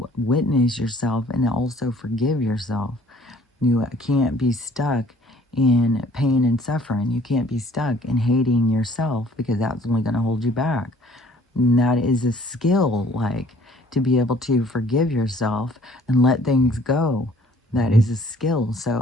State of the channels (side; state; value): both; normal; correlation 0.56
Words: witness yourself and also forgive yourself. You can't be stuck in pain and suffering. You can't be stuck in hating yourself, because that's only going to hold you back. And that is a skill, like, to be able to forgive yourself and let things go. That is a skill.